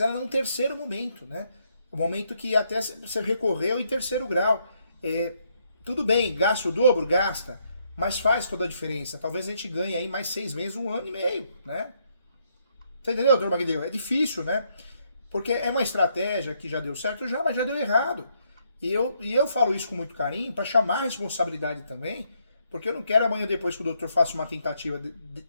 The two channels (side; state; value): both; inverted; correlation -0.74